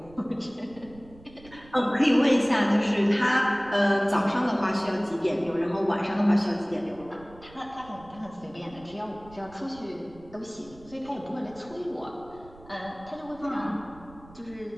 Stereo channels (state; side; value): noise; right; rumble, 22 dB below the sound